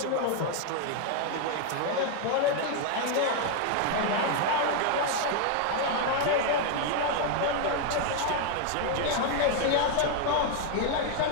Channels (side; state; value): both; different; correlation 0.01